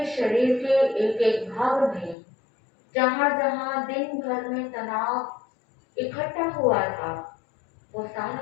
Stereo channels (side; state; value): right; drops out; at 2.1 s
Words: शरीर के एक एक भाग में जहां जहां दिन भर में तनाव इकट्ठा हुआ था, वो सारा